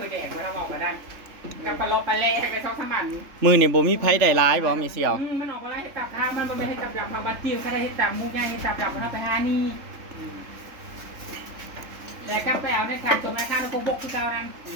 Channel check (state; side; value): late; left; 3.3 ms